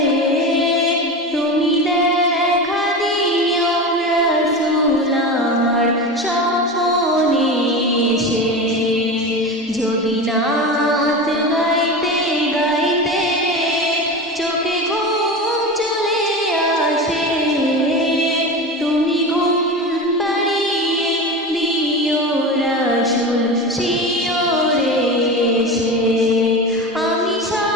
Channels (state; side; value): normal; both; correlation 0.26